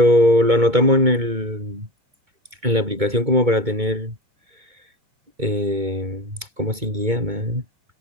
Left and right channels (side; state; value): left; late; 2.2 ms